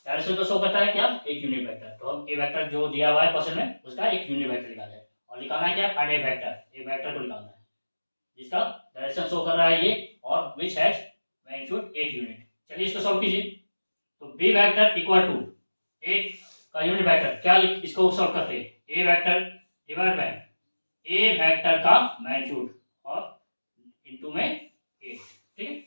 डायरेक्शन को शो करता है क्या एक यूनिट वेक्टर। तो हम ए वेक्टर जो दिया हुआ है क्वेश्चन में उसका एक यूनिट वेक्टर निकालना है और निकालना है क्या find A vector, a vector को निकालना है जिसका डायरेक्शन शो कर रहा है ये और विच हैज मैग्नीट्यूड 8 यूनिट। चलिए इसको सॉल्व कीजिए। तो b vector equal to a का यूनिट वेक्टर, क्या इसको सॉल्व करते हैं ए vector divide by a vector का मैग्नीट्यूड और इनटू में 8, ठीक है।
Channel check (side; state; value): both; inverted; correlation -1.00